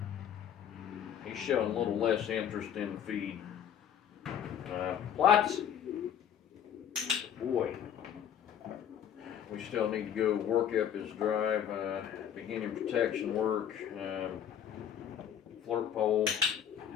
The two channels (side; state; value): right; quieter; 9.1 dB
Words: He's showing a little less interest in the feed. Plots. Boy. We still need to go work up his drive, beginning protection work, flirt pole.